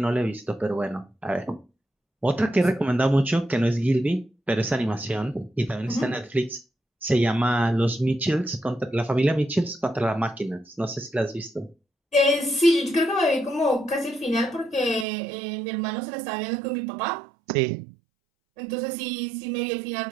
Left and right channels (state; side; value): drops out; left; at 15.1 s